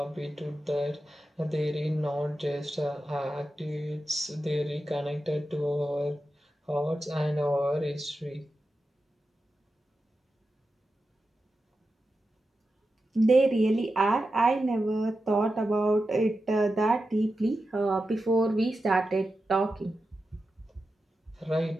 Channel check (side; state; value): both; normal; correlation 0.91